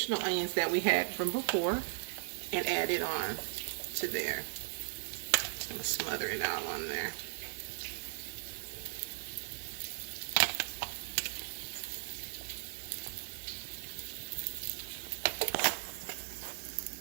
onions that we had from before and add it on to there. Just going to smother it all on there.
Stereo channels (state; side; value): silent; left; 53 dB below the other